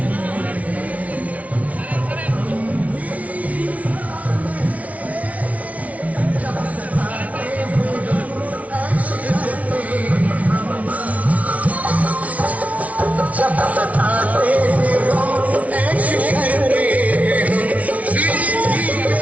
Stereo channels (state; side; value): late; left; 0.068 ms